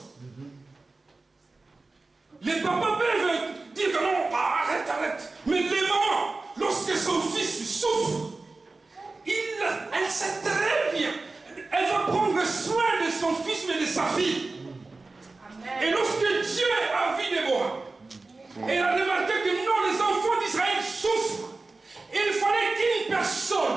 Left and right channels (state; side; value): quieter; left; 3.5 dB